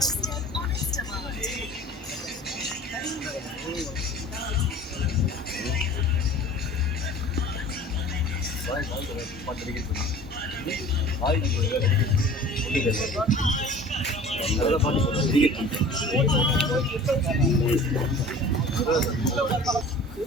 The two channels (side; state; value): both; normal; correlation 0.44